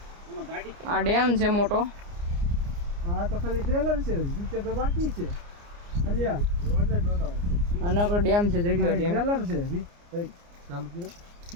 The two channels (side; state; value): left; late; 29 ms